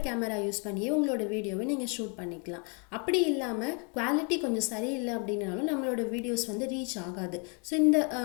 கேமரா யூஸ் பண்ணியே உங்களோட வீடியோவை நீங்கள் ஷூட் பண்ணிக்கலாம். அப்படி இல்லாமல் குவாலிட்டி கொஞ்சம் சரியில்லை அப்படின்னாலும் நம்மளோட வீடியோஸ் ரீச் ஆகாது. ஸோ இந்த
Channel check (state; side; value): quieter; right; 36.5 dB